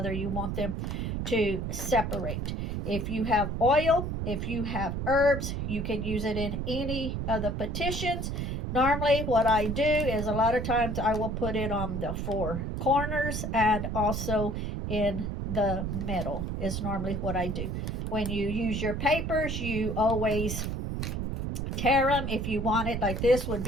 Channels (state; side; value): noise; right; rumble, 2 dB below the sound